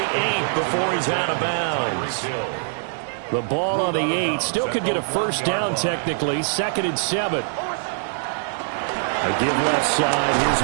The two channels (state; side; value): silent; left; digital silence